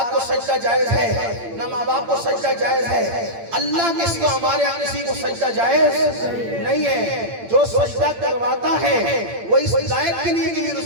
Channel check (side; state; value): left; late; 8.8 ms